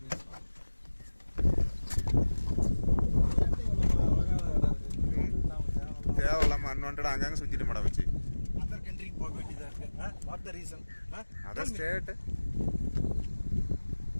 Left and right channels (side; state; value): both; inverted; correlation -1.00